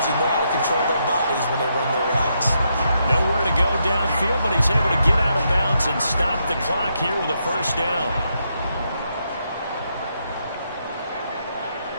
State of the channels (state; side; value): inverted; both; correlation -0.79